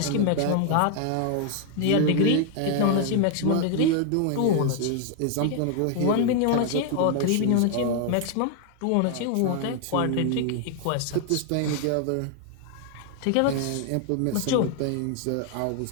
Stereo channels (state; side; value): different; both; correlation 0.00